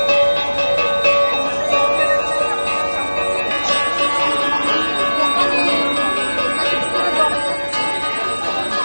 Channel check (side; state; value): both; inverted; correlation -1.00